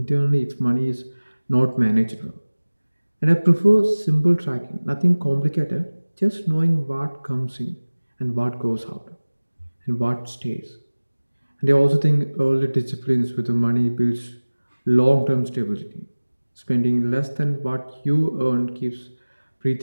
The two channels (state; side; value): inverted; both; correlation -1.00